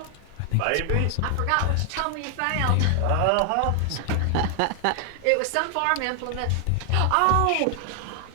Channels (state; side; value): different; both; correlation 0.00